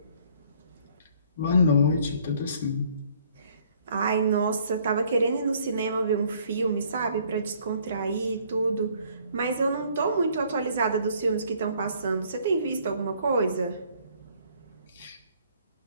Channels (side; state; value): both; inverted; correlation -0.61